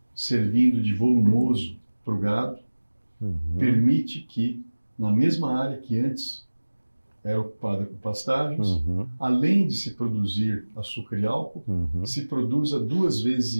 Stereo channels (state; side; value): inverted; both; correlation -1.00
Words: servindo de volumoso para o gado, permite que, na mesma área que antes era ocupada com pastagens, além de se produzir açúcar e álcool, se produza 2,5